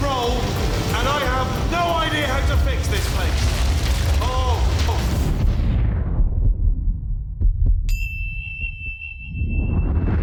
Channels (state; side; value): identical; both; correlation 1.00